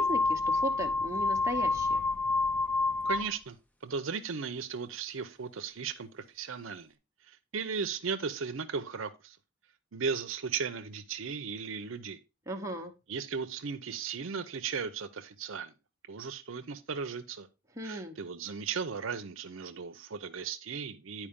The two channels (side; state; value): both; normal; correlation 0.43